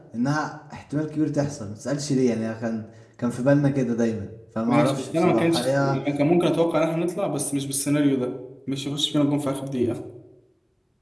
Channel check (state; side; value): identical; both; correlation 1.00